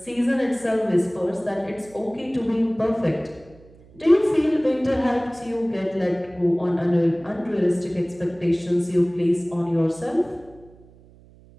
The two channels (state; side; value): noise; right; hum, 25 dB below the sound